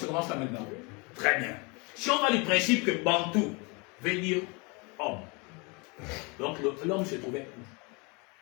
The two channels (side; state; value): right; quieter; 29.7 dB